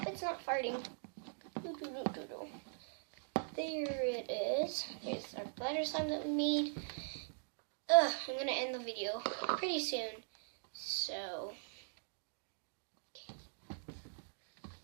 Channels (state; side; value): silent; left; digital silence